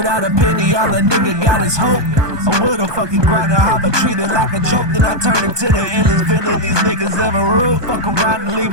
a penny, all a nigga got is hope. I would've fucking grinded hard, but treated like a joke. Then I turned into the endless villain these niggas ever ruled. Fuck around and leave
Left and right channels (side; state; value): left; late; 1.2 ms